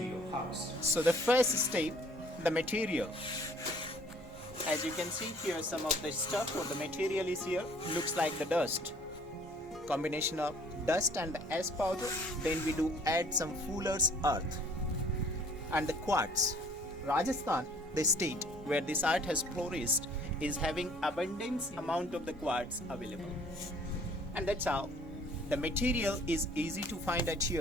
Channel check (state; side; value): normal; both; correlation 0.56